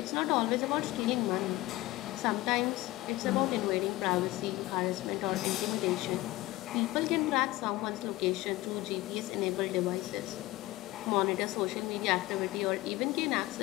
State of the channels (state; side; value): quieter; right; 18.4 dB